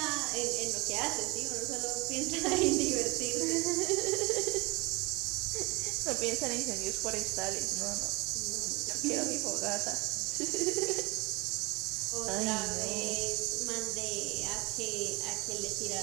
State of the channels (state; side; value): quieter; left; 25.6 dB